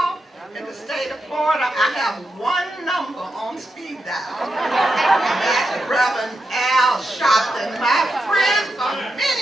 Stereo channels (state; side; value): normal; both; correlation 0.86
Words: in the state of Florida, I have one number on speed dial. And that's Reverend Al Sharpton, my friend for